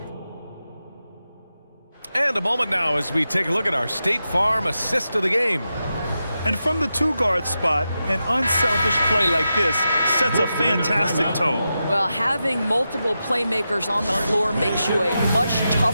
And a moment now as we take a look at our State Farm assist of the game. And from the two-guard spot, an unselfish play like this sets a fantastic tone. Well, having multiple playmakers on the floor makes you a much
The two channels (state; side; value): inverted; both; correlation -0.89